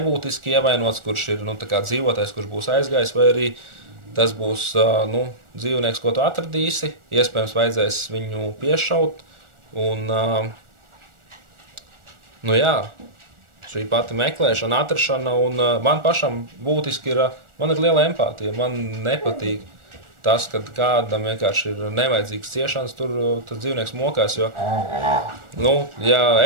ievainots, kurš ir, nu, tā kā dzīvotais, kurš būs aizgājis, vai arī tas būs, nu, dzīvnieks, ko tu atradīsi, iespējams vajadzēs viņu piešaut, un, nu jā, šī pati meklēšana, atrašana, un man pašam būtiski ir, man ir liela empātija, man nepatīk tas, kad kādam vienkārši ir nevajadzīgs ciešanas, tur tas dzīvnieks mokās, jo, nu, ja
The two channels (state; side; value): late; left; 1.4 ms